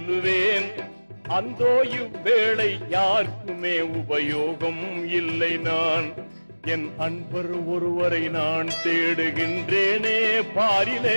அந்தோ இவ்வேளை யாருக்குமே உபயோகம் இல்லை. நான் என் அன்பர் ஒருவரை நான் தேடுகின்றேனே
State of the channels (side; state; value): both; inverted; correlation -1.00